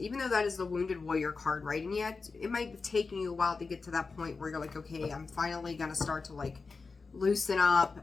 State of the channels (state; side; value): quieter; right; 4.4 dB